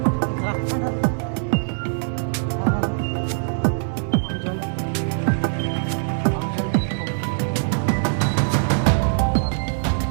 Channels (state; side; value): silent; left; digital silence